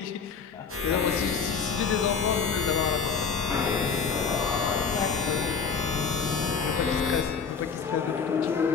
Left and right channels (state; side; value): quieter; right; 5.8 dB